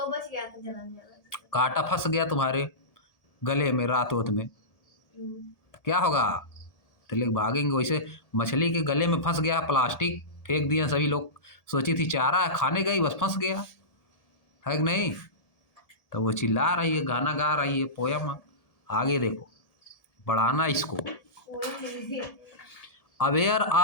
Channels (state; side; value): late; right; 1.7 ms